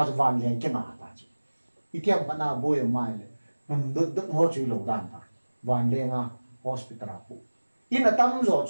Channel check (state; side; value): inverted; both; correlation -1.00